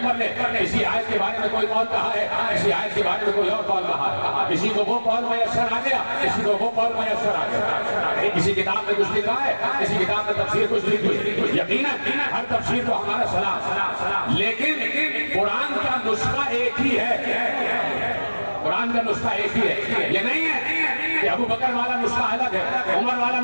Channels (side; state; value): both; inverted; correlation -1.00